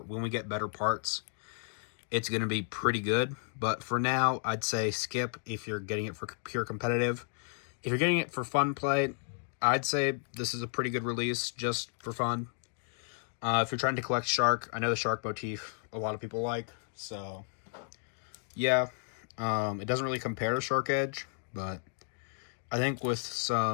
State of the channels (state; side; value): silent; right; digital silence